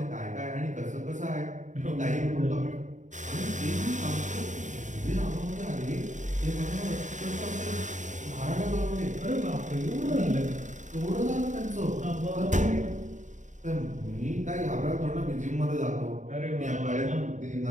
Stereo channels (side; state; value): left; late; 0.36 ms